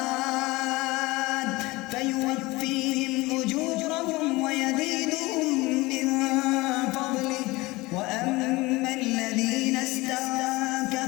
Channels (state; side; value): quieter; right; 21.7 dB